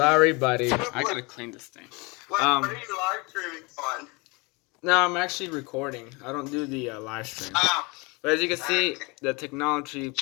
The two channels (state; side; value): quieter; right; 27.5 dB